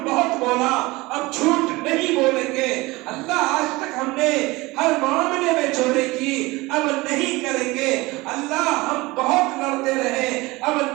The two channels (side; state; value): left; quieter; 21.7 dB